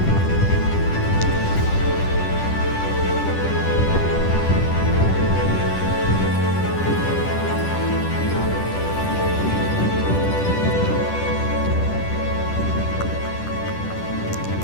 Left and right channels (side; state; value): right; late; 10 ms